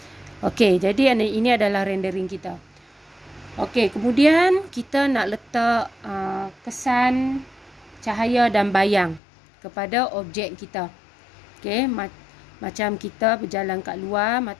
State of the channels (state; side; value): drops out; right; at 9.2 s